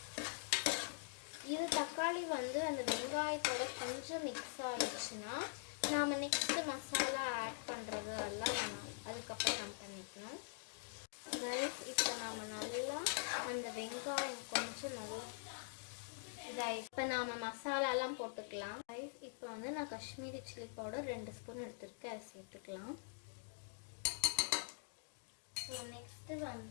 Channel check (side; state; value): right; silent; digital silence